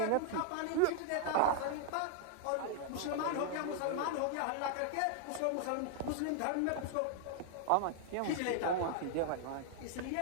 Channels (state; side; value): different; both; correlation 0.00